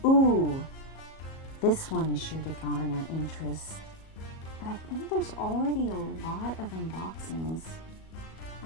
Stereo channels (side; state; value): right; late; 37 ms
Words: This one is sure to garner interest. But I think there's already a lot of unboxings.